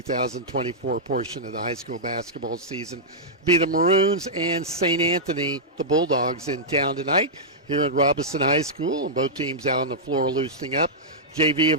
portion of the high school basketball season. Be the Maroons and St. Anthony, the Bulldogs, in town tonight here at Robinson High School, and both teams out on the floor loosening up. JV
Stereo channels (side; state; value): both; normal; correlation -0.10